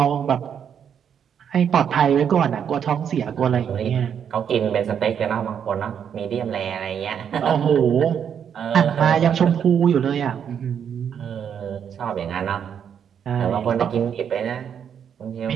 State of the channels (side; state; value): left; quieter; 8.1 dB